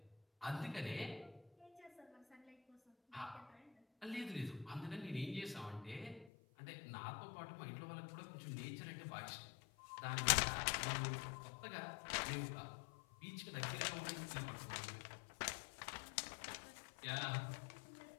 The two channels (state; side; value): drops out; right; at 6.3 s